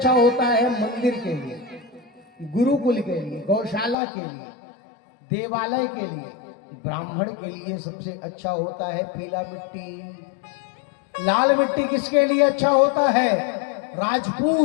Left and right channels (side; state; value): right; drops out; at 4.0 s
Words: होता है मंदिर के लिए, गुरुकुल के लिए, गौशाला के लिए, देवालय के लिए, ब्राह्मण के लिए सबसे अच्छा होता है पीला मिट्टी। लाल मिट्टी किसके लिए अच्छा होता है?